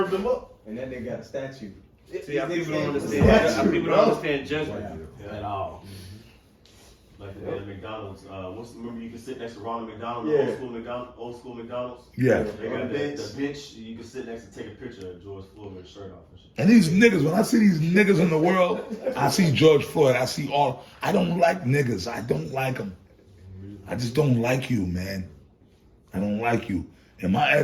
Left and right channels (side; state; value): both; identical; correlation 1.00